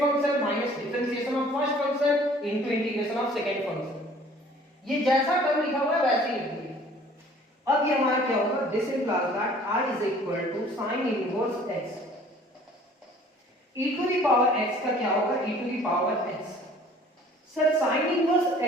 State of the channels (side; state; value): both; normal; correlation 0.53